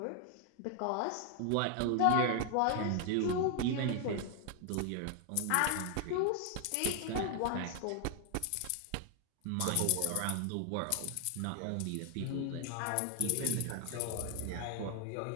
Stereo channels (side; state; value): both; different; correlation 0.00